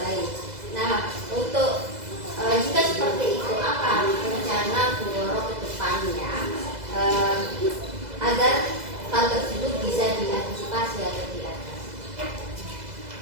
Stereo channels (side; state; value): left; late; 2.0 ms